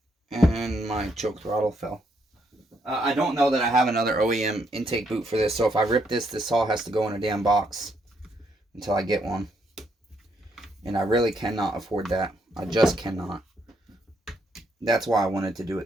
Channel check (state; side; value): normal; both; correlation 0.74